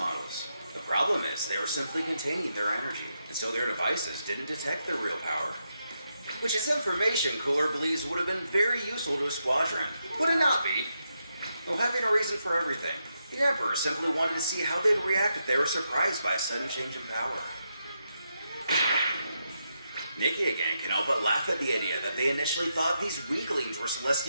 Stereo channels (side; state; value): both; inverted; correlation -0.83